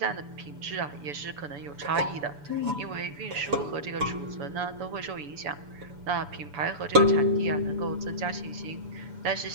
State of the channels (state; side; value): late; left; 7.0 ms